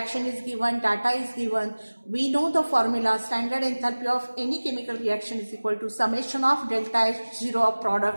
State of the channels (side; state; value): both; inverted; correlation -1.00